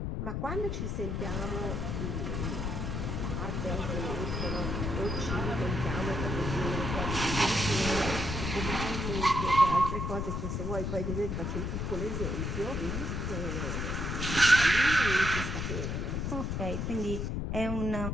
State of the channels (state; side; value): noise; left; rumble, 2 dB below the sound